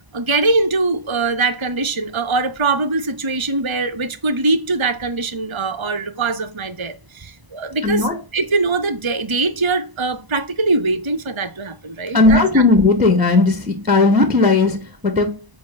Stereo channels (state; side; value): late; left; 1.0 ms